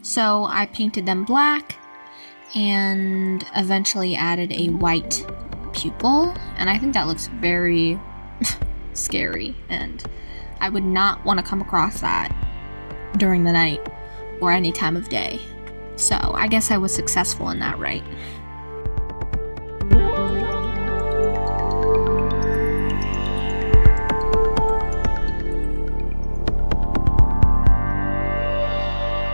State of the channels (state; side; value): inverted; both; correlation -1.00